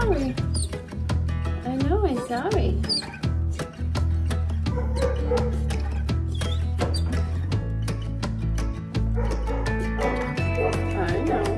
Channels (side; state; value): both; identical; correlation 1.00